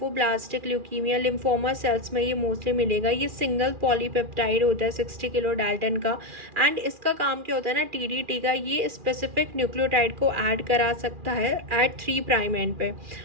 leukaemia, lymphoma cells में ये मोस्टली मिलेगा। ये सिंगल पॉलीपेप्टाइड होता है 60 किलो डाल्टन का। एंड इसका काम क्या होता है ना TDT का, ये स्पेसिफिक न्यूक्लियोटाइड को ऐड करा सकता है एट 3' एंड पे,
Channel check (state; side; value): late; left; 2.4 ms